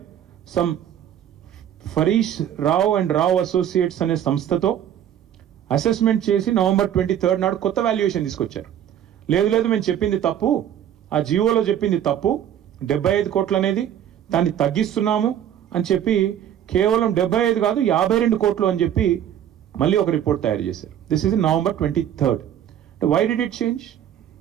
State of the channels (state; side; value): quieter; left; 10.2 dB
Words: some ఫరీష్ Rao and Rao associates అనే సంస్థతో అసెస్మెంట్ చేసి November 23rd నాడు కొత్త వాల్యుయేషన్ తీసుకొచ్చారు. లేదు మేము చెప్పింది తప్పు, ఆ జియోలో చెప్పింది తప్పు, 75 కోట్లు అనేది దాన్ని తగ్గిస్తున్నాము అని చెప్పి కేవలం 75 కాదు 52 కోట్లు అని చెప్పి మళ్ళీ ఒక రిపోర్ట్ తయారు చేశారు. This is November 23rd. Why did it change?